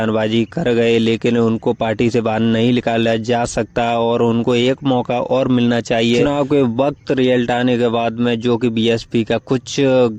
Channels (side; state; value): both; identical; correlation 1.00